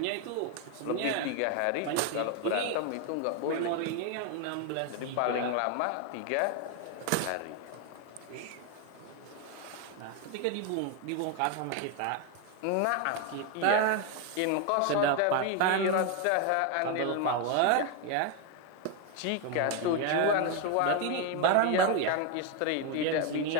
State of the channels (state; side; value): different; both; correlation 0.01